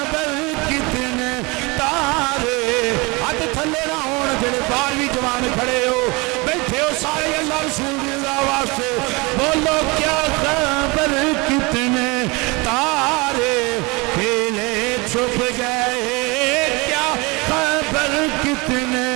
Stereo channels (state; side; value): quieter; left; 26.2 dB